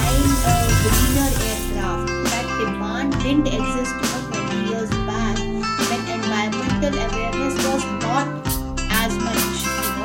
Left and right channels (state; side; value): identical; both; correlation 1.00